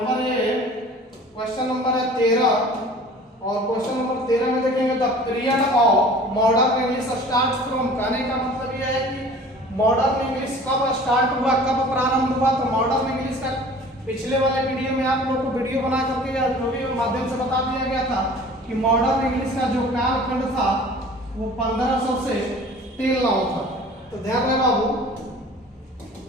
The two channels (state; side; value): normal; both; correlation 0.45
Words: क्वेश्चन नंबर है 13, और क्वेश्चन नंबर 13 में देखेंगे the period of modern English start from. कहने का मतलब यह है कि मॉडर्न इंग्लिश कब स्टार्ट हुआ, कब प्रारंभ हुआ? तो मॉडर्न इंग्लिश का पिछले वाले वीडियो में आप लोगों को वीडियो बना करके या जो भी माध्यम से बता दिया गया था कि मॉडर्न इंग्लिश का जो कालखंड था वो 1500 से टिल नाउ था। तो ध्यान रहे बाबू,